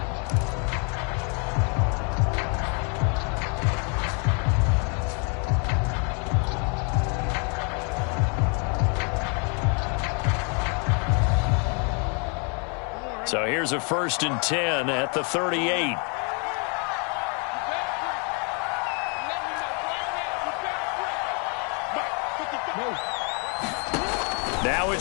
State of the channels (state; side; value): quieter; right; 36.8 dB